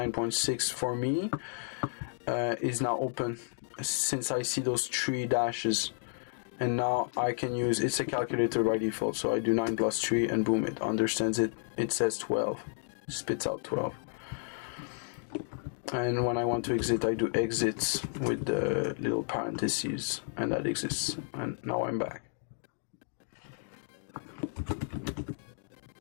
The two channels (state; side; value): silent; right; digital silence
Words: for me is now open, since I see those 3 dashes, and now I can use, it's a calculator by default, so I do 9 plus 3 and boom, it understands it. It says 12, spits out 12. And when I want to exit, I do exits with the little parentheses, and that exists. And now I'm back.